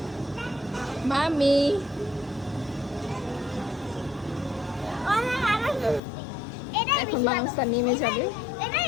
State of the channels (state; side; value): drops out; right; at 6.0 s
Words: মামি এখন বারাসা নেমে যাবে।